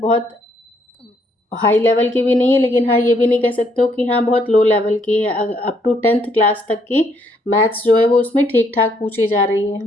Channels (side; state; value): both; normal; correlation 0.70